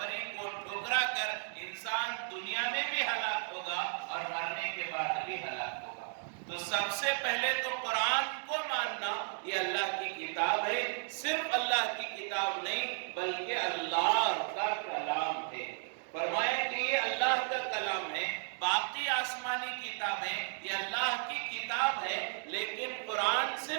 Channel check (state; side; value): silent; left; 55 dB below the other